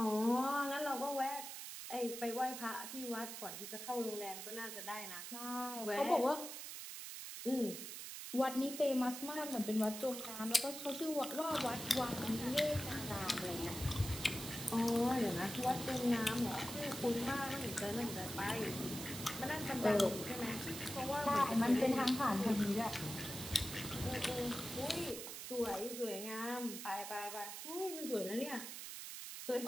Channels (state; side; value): noise; right; hiss, 8 dB below the sound